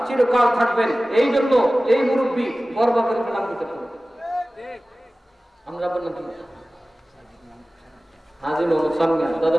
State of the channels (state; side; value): normal; both; correlation 0.97